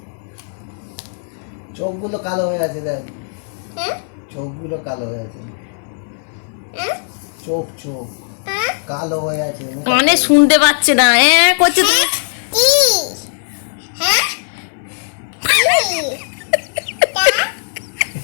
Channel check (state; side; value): silent; right; 63 dB below the other